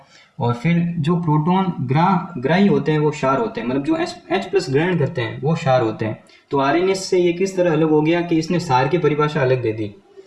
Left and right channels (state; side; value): identical; both; correlation 1.00